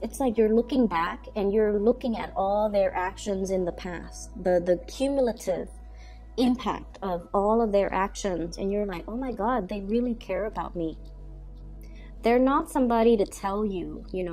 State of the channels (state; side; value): identical; both; correlation 1.00